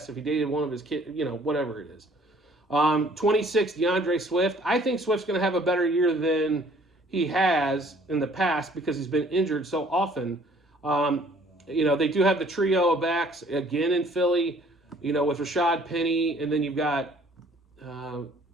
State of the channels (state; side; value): normal; both; correlation 0.57